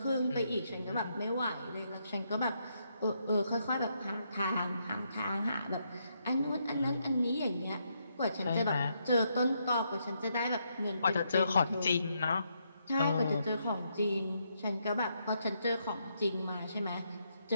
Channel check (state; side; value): inverted; both; correlation -0.78